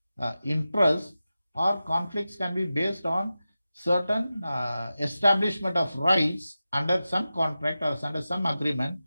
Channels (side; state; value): both; inverted; correlation -0.94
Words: interest, or conflicts can be based on certain establishment of rights under some contract or under some agreement.